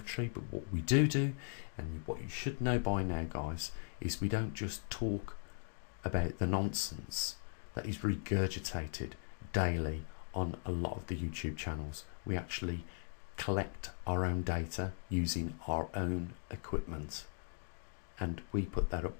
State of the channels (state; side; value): silent; right; digital silence